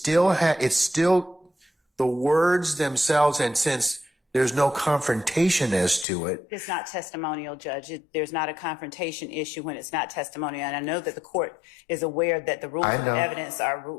the words themselves, and since there's no confrontation as to it. It's not testimonial, Judge. There's not a confrontation issue when it's not testimonial. And I know that the court is aware that the rules of evidence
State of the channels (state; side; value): drops out; right; at 6.1 s